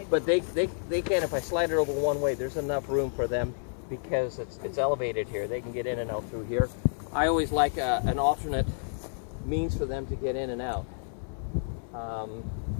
But they can, if I slide it over one way, there's enough room for them because it's elevated here. They can get in and out through here. I always like an alternate means for them to get in and out.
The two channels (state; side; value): silent; right; 57 dB below the other